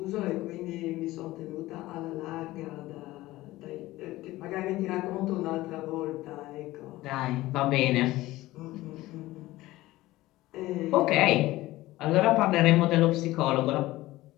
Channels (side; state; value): right; quieter; 17.6 dB